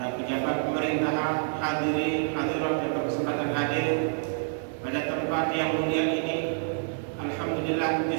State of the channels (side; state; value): left; silent; 60 dB below the other